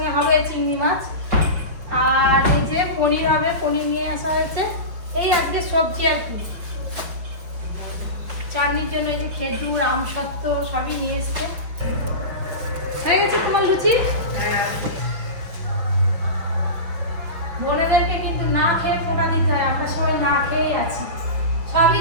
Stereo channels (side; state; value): left; late; 5.8 ms